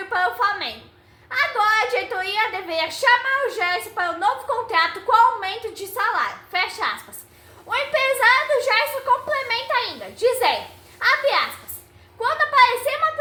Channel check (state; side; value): identical; both; correlation 1.00